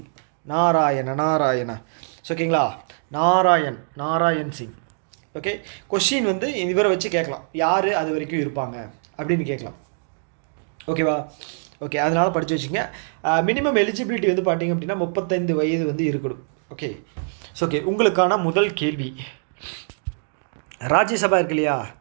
நாராயணா ஓகேங்களா, நாராயண் சிங். ஓகே, கொஷின் வந்து இவரை வச்சு கேட்கலாம், யார் அது வரைக்கும் இருப்பாங்க அப்படின்னு கேட்கலாம். ஓகேவா? ஓகே, அதனால் படித்து வச்சுங்க. மினிமம் எலிஜிபிலிட்டி வந்து பார்த்திங்க அப்படின்னா 35 வயது வந்து இருக்கணும். ஓகே, ஸோ ஓகே, உங்களுக்கான முதல் கேள்வி, ராஜ்யசபா இருக்கு இல்லையா,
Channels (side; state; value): left; silent; digital silence